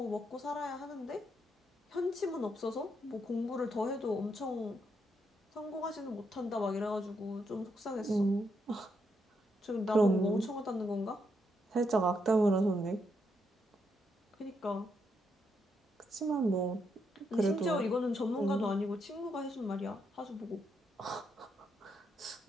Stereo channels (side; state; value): both; normal; correlation 0.79